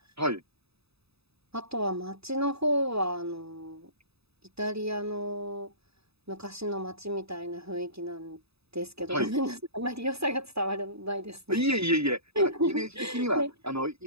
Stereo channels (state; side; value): late; left; 0.78 ms